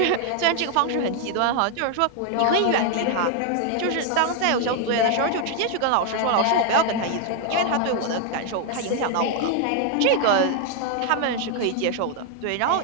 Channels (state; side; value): different; both; correlation 0.00